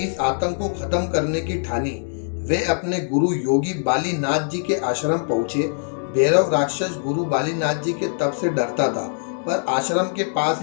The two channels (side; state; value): right; silent; digital silence